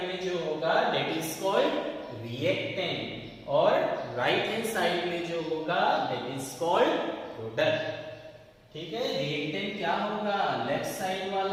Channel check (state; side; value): identical; both; correlation 1.00